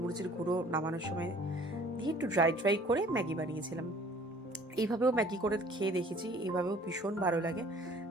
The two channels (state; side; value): normal; both; correlation 0.53